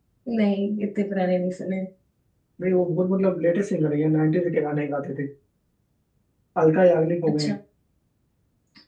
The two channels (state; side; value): identical; both; correlation 1.00